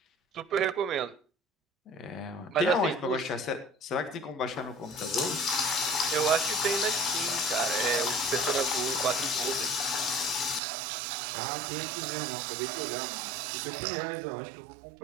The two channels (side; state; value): left; drops out; at 10.6 s